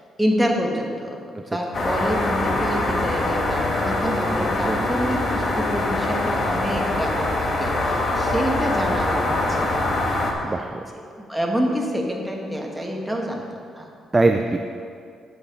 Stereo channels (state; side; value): normal; both; correlation 0.81